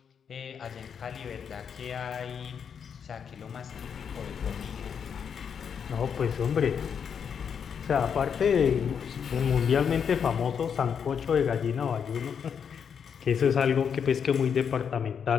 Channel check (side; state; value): right; quieter; 7.2 dB